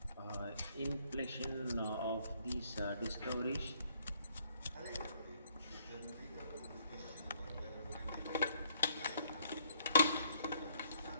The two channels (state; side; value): inverted; both; correlation -0.66